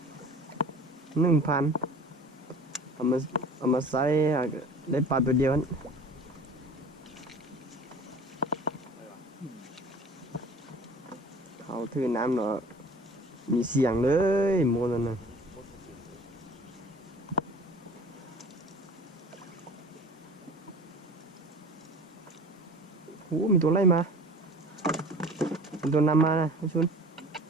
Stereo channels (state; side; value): normal; both; correlation 0.43